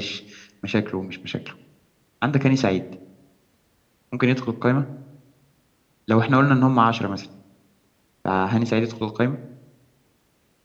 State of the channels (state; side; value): identical; both; correlation 1.00